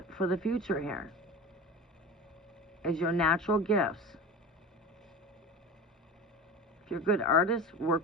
for the future here. Is your natural gifts. If you're a good artist,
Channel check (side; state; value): both; normal; correlation 0.31